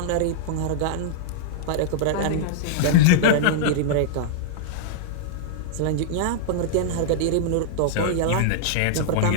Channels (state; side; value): different; both; correlation -0.02